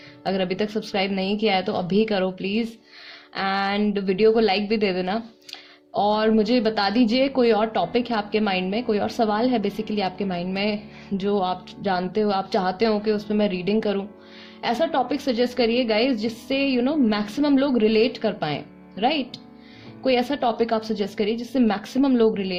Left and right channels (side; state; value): both; identical; correlation 1.00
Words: अगर अभी तक सब्सक्राइब नहीं किया है तो अभी करो प्लीज, एंड वीडियो को लाइक भी दे देना। और मुझे बता दीजिए कोई और टॉपिक है आपके माइंड में, कोई और सवाल है बेसिकली आपके माइंड में जो आप जानते हो, आप चाहते हो कि उस पर मैं रीडिंग करूं। ऐसा टॉपिक सजेस्ट करिए गाइज जिससे मैक्सिमम लोग रिलेट कर पाए। राइट, कोई ऐसा टॉपिक आप सजेस्ट करिए जिससे मैक्सिमम लोग